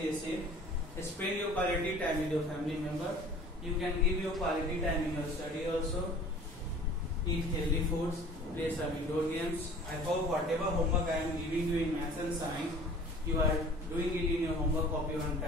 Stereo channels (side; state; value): both; normal; correlation 0.47